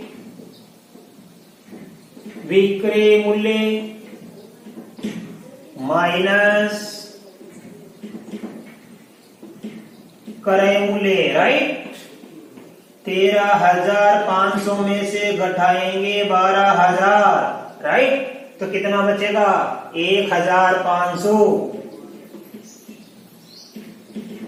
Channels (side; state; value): both; identical; correlation 1.00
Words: विक्रय मूल्य माइनस क्रय मूल्य। राइट? 13,500 में से घटाएंगे 12,000। राइट? तो कितना बचेगा? 1,500।